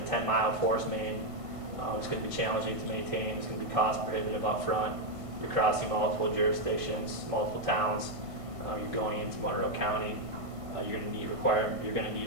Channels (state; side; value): late; left; 1.5 ms